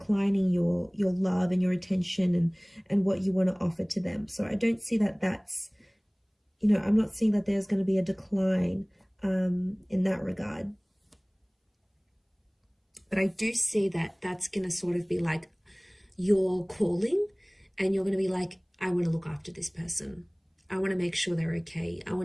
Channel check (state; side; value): identical; both; correlation 1.00